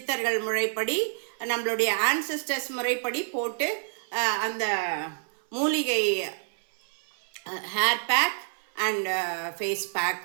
முறைப்படி, நம்மளுடைய ஆன்செஸ்டர்ஸ் முறைப்படி போட்டு அந்த மூலிகை hair pack and face pack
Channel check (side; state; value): left; silent; 59 dB below the other